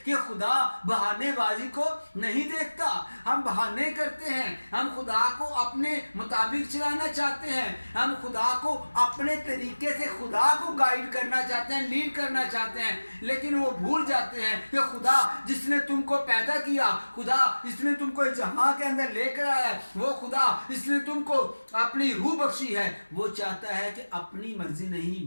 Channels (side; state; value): both; inverted; correlation -1.00